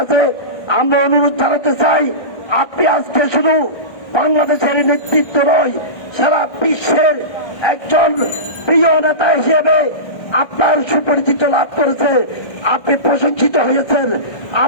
আমরা অনুরোধ জানাতে চাই, আপনি আজকে শুধু বাংলাদেশের নেতৃত্ব নয়, সারা বিশ্বের একজন প্রিয় নেতা হিসেবে আপনার সুপরিচিত লাভ করেছে, আপনি প্রশংসিত হয়েছেন।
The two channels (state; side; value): late; right; 1.3 ms